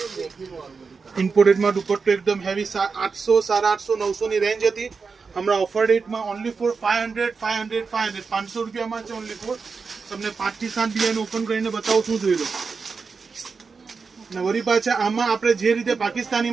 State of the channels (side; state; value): left; quieter; 4.9 dB